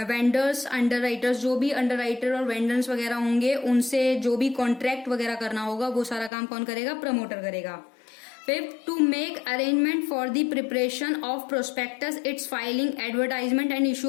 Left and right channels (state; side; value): drops out; right; at 6.3 s